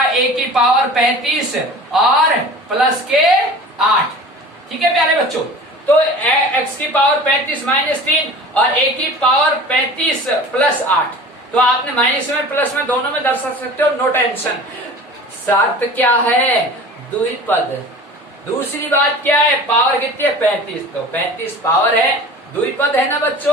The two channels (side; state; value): both; normal; correlation 0.40